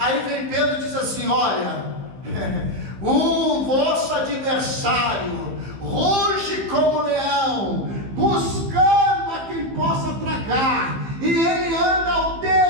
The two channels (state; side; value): late; left; 15 ms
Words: vem Pedro e diz assim: olha, o vosso adversário ruge como leão, buscando a quem possa tragar, e ele anda ao